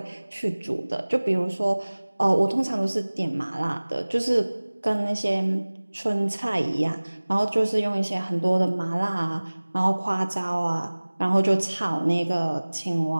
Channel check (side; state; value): both; inverted; correlation -1.00